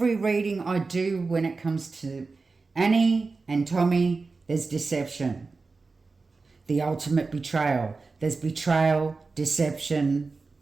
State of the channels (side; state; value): left; quieter; 4.0 dB